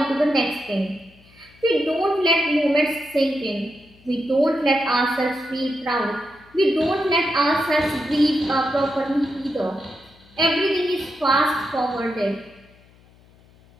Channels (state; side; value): noise; left; hum, 28 dB below the sound